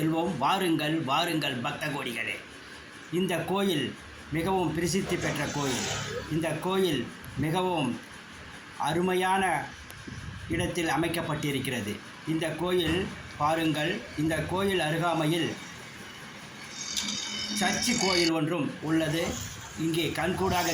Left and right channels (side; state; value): both; identical; correlation 1.00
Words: வாருங்கள் வாருங்கள் பக்த கோடிகளே. இந்த கோயில் மிகவும் பிரசித்தி பெற்ற கோயில். இந்த கோயில் மிகவும் அருமையான இடத்தில் அமைக்கப்பட்டிருக்கிறது. இந்த கோயில் பாருங்கள், இந்த கோயில் அருகாமையில் சர்ச்சு கோயில் ஒன்றும் உள்ளது. இங்கே கண்கூடாக